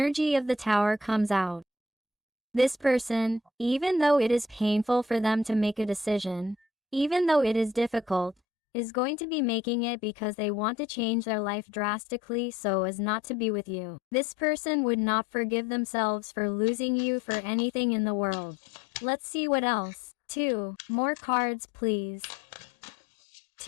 of the Tower comes out. This person, even though it is painful for them to make a decision, even though it is difficult, is going to be making it because they want to change their life drastically so as not to be with you. This person would not forgive themselves for losing you for anything in the world. Let's see what else. 2 more cards, please.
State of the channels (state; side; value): drops out; right; at 8.3 s